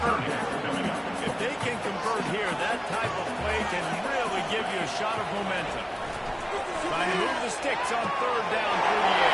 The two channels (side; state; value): both; identical; correlation 1.00